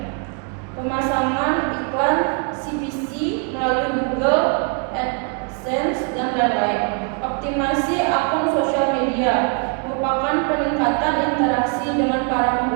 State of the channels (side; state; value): left; quieter; 36.1 dB